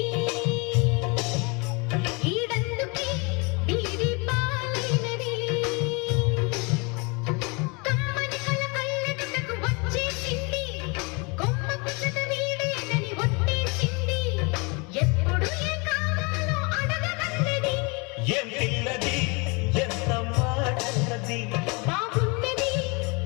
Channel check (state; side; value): quieter; right; 29.9 dB